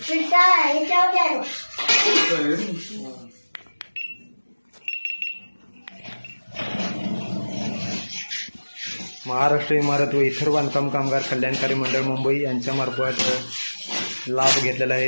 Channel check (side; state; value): both; inverted; correlation -1.00